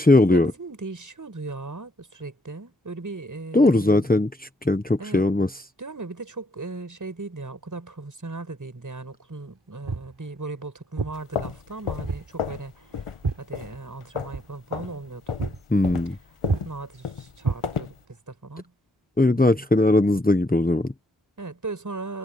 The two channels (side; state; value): both; normal; correlation 0.72